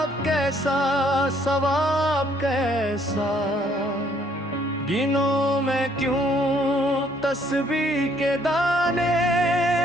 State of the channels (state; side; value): normal; both; correlation 0.65